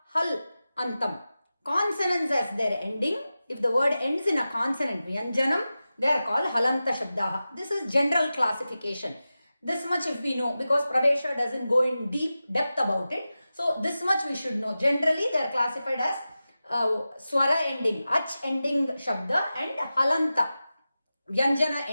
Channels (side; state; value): both; inverted; correlation -0.94